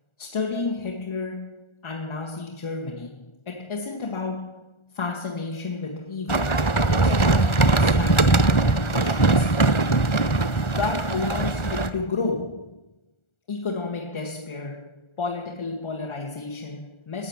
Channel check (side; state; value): right; late; 1.4 ms